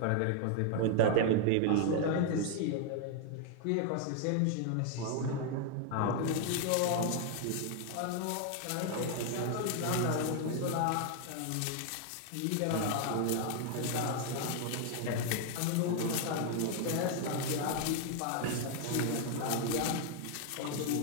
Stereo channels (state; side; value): different; both; correlation 0.00